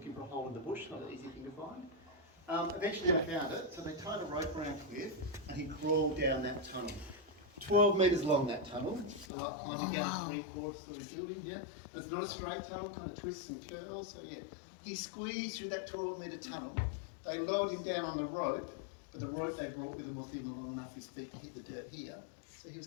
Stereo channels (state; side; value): drops out; right; at 9.3 s